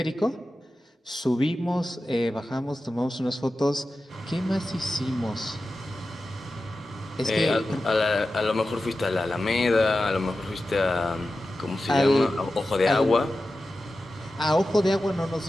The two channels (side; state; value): both; normal; correlation 0.93